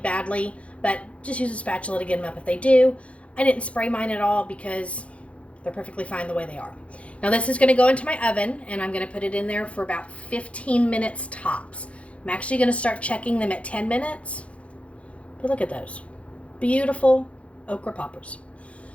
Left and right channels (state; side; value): late; right; 0.063 ms